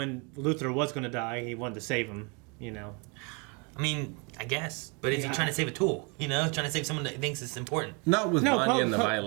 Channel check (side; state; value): left; quieter; 32.6 dB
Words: Luther was going to die. He wanted to save him. You know. I mean, I guess. But is he Yeah. trying to save a tool? You know, trying to save someone that thinks it's important. Not with No, Vanya and the Po-